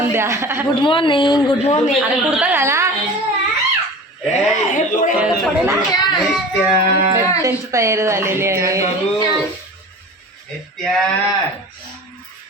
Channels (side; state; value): both; normal; correlation 0.37